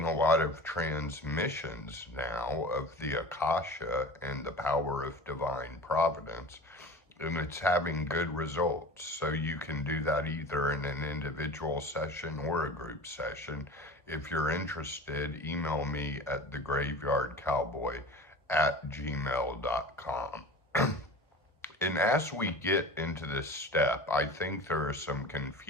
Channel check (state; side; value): normal; both; correlation 0.36